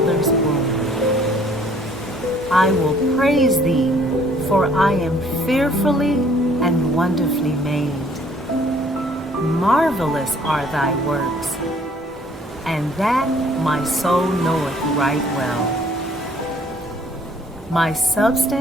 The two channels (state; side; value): normal; both; correlation 0.59